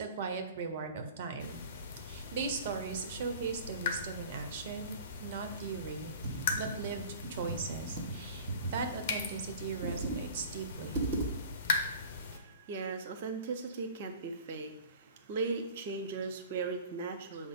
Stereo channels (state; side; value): inverted; both; correlation -0.41